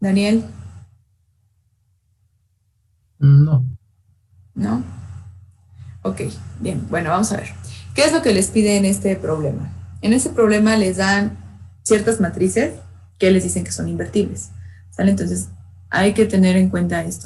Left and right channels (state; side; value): identical; both; correlation 1.00